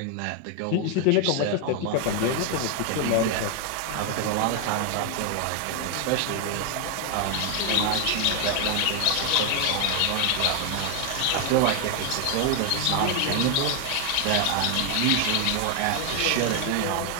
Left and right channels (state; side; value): different; both; correlation 0.00